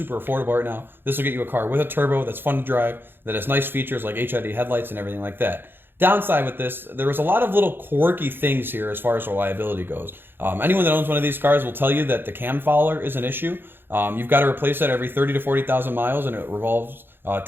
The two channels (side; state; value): left; late; 0.10 ms